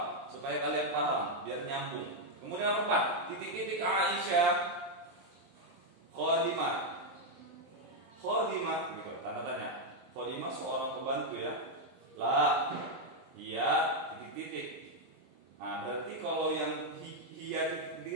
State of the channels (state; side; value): late; left; 23 ms